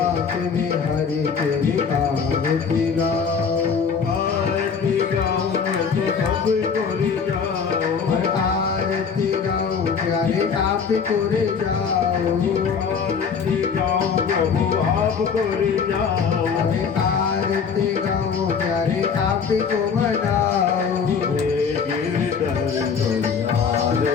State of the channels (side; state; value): right; quieter; 6.2 dB